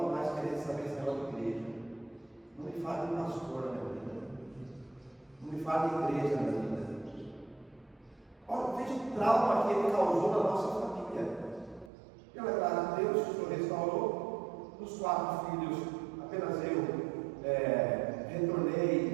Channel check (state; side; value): drops out; left; at 11.9 s